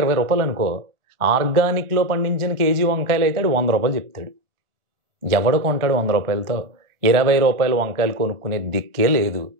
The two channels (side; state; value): left; late; 1.4 ms